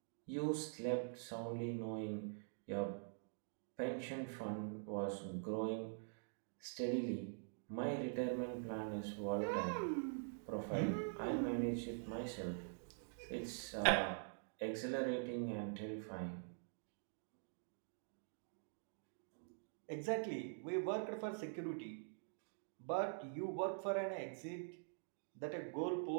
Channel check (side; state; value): left; silent; digital silence